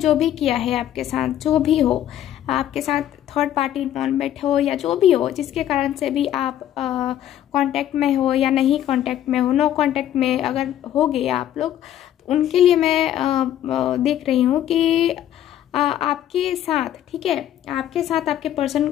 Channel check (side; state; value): right; quieter; 11.6 dB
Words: भी किया है आपके साथ, जो भी हो आपके साथ, थर्ड पार्टी इन्वॉल्वमेंट हो या जो भी हो, जिसके कारण से भी आप कांटेक्ट में हो या नहीं कांटेक्ट में हो, नो कांटेक्ट में अगर हो गए आप लोग, तो उनके लिए मैं देख रही हूँ कि आपके साथ, ठीक है, आपके साथ आपके पर्सन